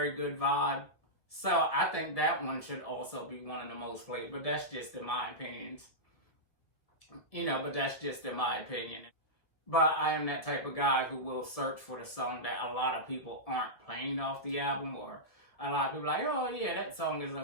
good vibe. So I think that one should also be one of the most played, but that's just in my opinion. You know, but that's just in my opinion. But I am that type of guy who will search for the song that a lot of people aren't playing off the album, or a lot of people like, oh yeah, that song is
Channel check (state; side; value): late; right; 1.9 ms